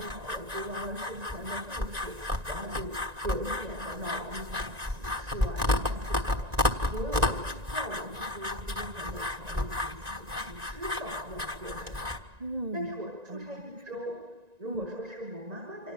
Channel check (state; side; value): late; left; 1.9 ms